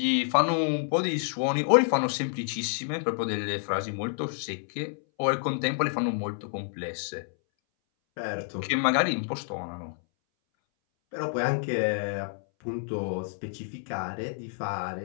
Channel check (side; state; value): right; silent; 59 dB below the other